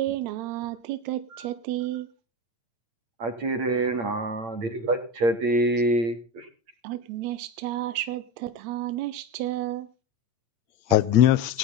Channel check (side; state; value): left; late; 8.7 ms